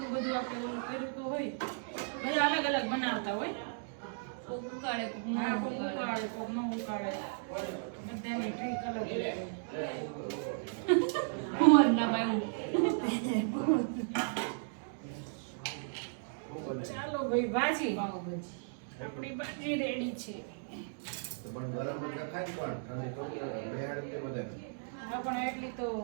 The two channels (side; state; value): left; silent; digital silence